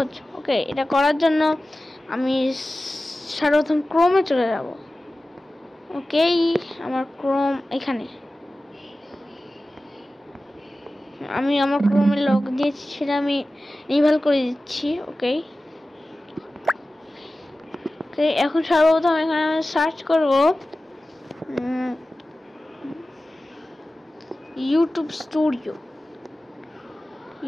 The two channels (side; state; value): both; normal; correlation 0.96